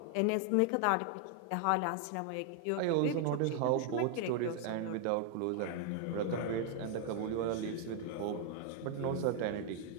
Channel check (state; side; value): different; both; correlation 0.00